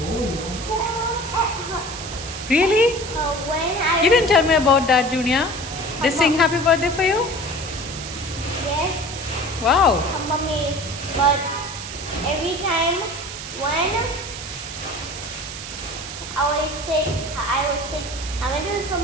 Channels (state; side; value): noise; right; hiss, 9 dB below the sound